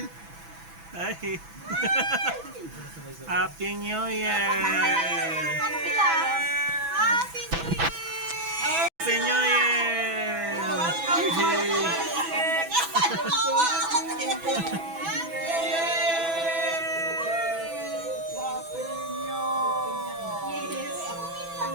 Ay. Happy New Year! Ano sila? Happy New Year! Happy New Year!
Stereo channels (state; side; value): late; left; 6.1 ms